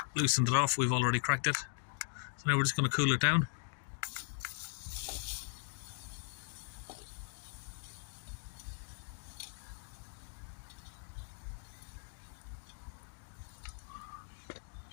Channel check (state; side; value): silent; right; digital silence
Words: loosened it off. We've already cracked it. So now we're just going to cool it down.